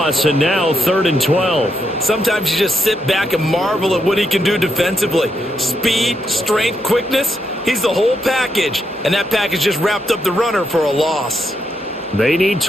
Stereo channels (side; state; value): both; normal; correlation 0.80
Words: and now 3rd and 12. Sometimes you just sit back and marvel at what he can do defensively. Speed, strength, quickness, he's the whole package. And that package just wrapped up the runner for a loss. They need